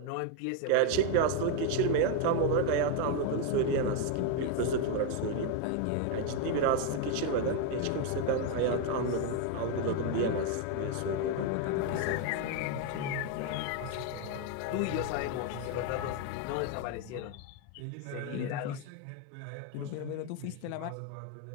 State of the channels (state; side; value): different; both; correlation 0.01